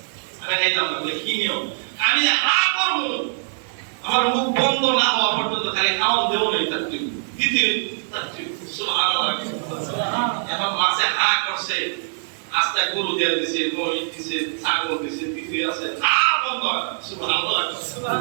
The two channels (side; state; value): left; silent; 64 dB below the other